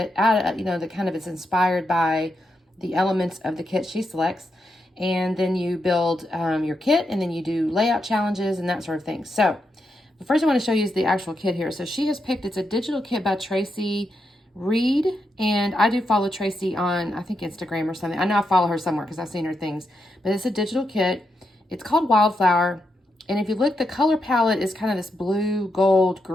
out of, that kind of is inspired by the elements of the kit she selects. And then you build your kit, and then you do layout challenges and that sort of thing. So the first I want to show you is the actual kit here. So she has picked, it's a digital kit by Tracy Reed. And I do follow Tracy on, I think, Instagram or something. I know I follow her somewhere because I've seen her things. But it's a digital kit. It's called Wildflower. And if you look, the color palette is kind of this blue, gold,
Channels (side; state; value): both; normal; correlation 0.84